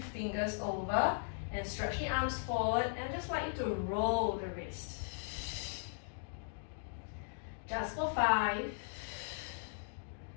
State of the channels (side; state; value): right; silent; digital silence